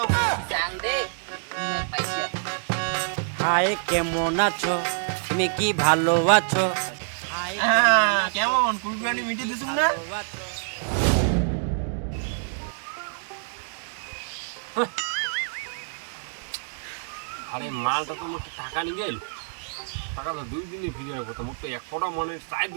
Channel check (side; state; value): left; silent; digital silence